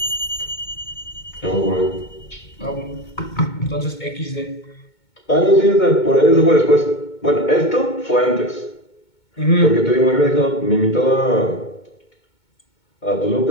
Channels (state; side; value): late; right; 2.2 ms